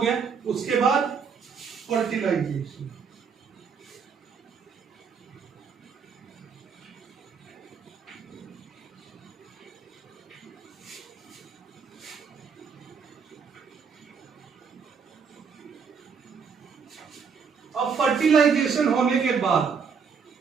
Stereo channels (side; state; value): left; quieter; 6.0 dB